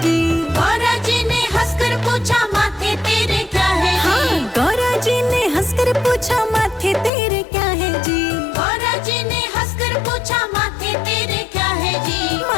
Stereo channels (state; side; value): drops out; right; at 7.1 s